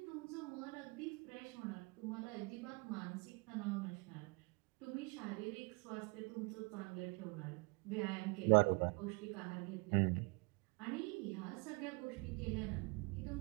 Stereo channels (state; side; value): quieter; left; 30.2 dB